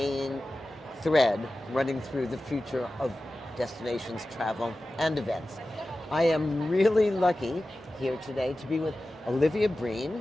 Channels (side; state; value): both; normal; correlation 0.95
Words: thread running through the future of destinations, travel, and events. I am really lucky here today to be with Olivia